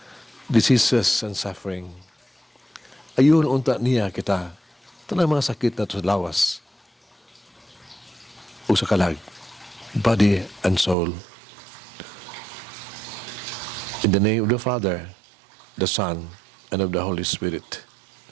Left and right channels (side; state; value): left; drops out; at 11.0 s